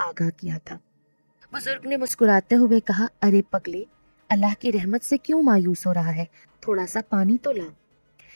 किया था। बुजुर्ग ने मुस्कुराते हुए कहा, अरे पगले, अल्लाह की रहमत से क्यों मायूस हो रहा है? थोड़ा सा पानी तो ला।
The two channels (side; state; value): both; inverted; correlation -1.00